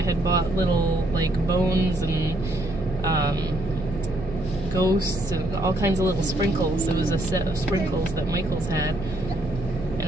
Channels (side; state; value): right; noise; hum, 11 dB below the sound